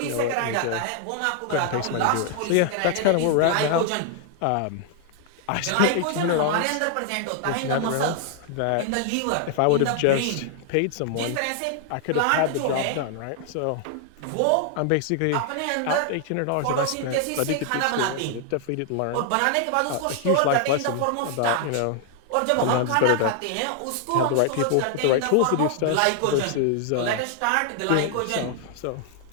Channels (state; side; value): different; both; correlation 0.00